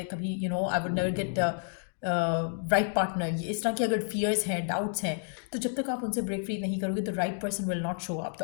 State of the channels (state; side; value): silent; right; digital silence